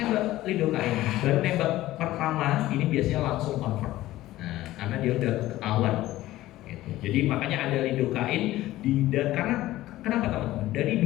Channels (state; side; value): quieter; right; 15.9 dB